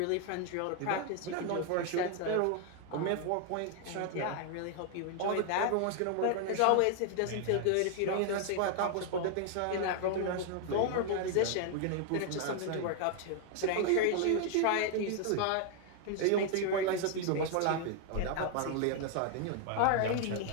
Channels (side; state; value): both; different; correlation 0.00